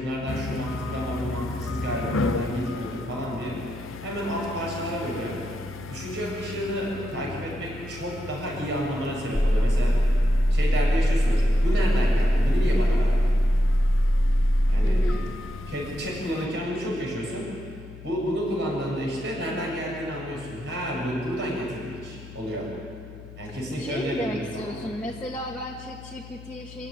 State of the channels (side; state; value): left; noise; hum, 16 dB below the sound